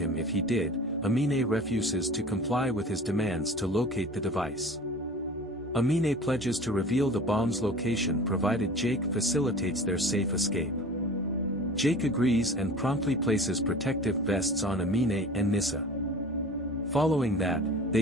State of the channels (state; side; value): normal; both; correlation 0.40